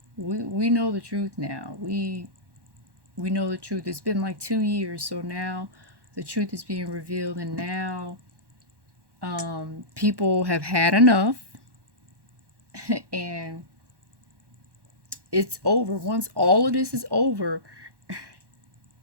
we know the truth now. We know the truth. It's been like 2 years, so now the truth is being revealed, and now people have had enough. And it's over. Once all of this is over,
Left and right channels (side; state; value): left; late; 1.1 ms